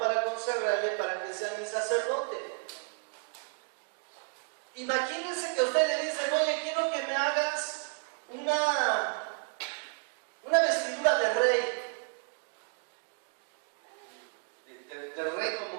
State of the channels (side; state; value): left; quieter; 38.9 dB